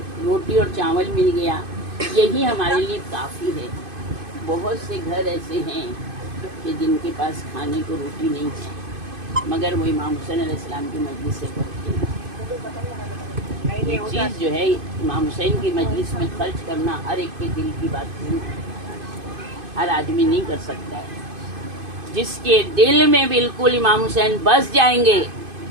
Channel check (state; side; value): late; left; 2.5 ms